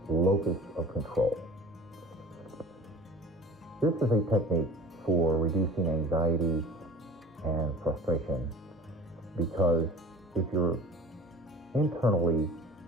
locus of control. This is a technique for reducing anxiety and frustration because if you're internally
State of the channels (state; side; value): normal; both; correlation 0.43